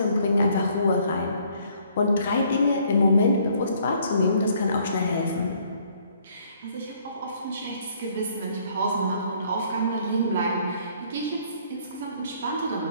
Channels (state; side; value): inverted; both; correlation -0.63